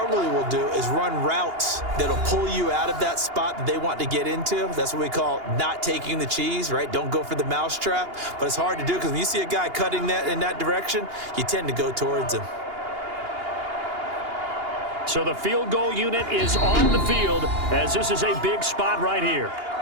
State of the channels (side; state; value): left; late; 2.8 ms